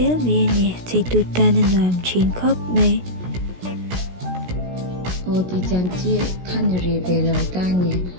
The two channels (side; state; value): left; late; 16 ms